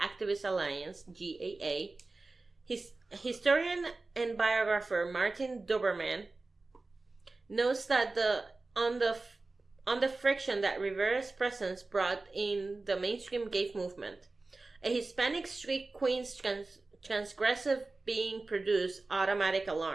Activist Alliance, GAA. Historian and biographer Martin Doberman notes that on the friction that Rivera's presence brought in the mainstream gay movement. A Hispanic street queen's transgressive being produced automatic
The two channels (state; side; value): quieter; left; 3.4 dB